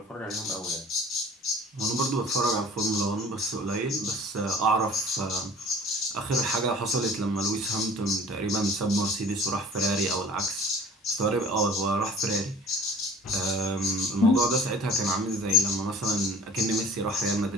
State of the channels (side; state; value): both; normal; correlation 0.47